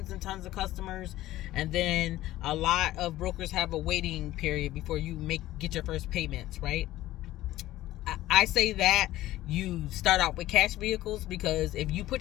and tons of customers, and then a lot of brokers have a waiting period before you get your first payments, right? I say that you start out with cash vehicles, because if you put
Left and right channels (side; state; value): right; quieter; 15.4 dB